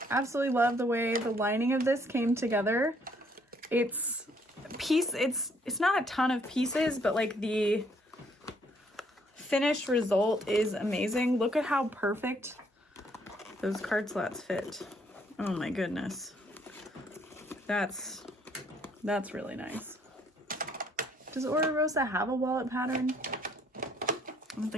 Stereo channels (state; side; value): normal; both; correlation 0.67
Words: absolutely love the way the lining of this came together. It's not a ton of pieces, but like the finished result is amazing. Look at how perfect those card slots fit. Oh my goodness. That's really nice. Does Oro Rosa have a wallet pattern? I don't